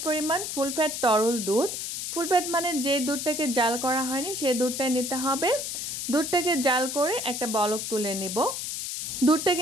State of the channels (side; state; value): left; noise; hiss, 4 dB below the sound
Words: পরিমাণ ফুল ফ্যাট তরল দুধ। ফুল ফ্যাট মানে যে দুধটাকে জাল করা হয়নি সেই দুধটাই নিতে হবে। দুধটাকে জাল করে একটা বলক তুলে নেব। দুধটা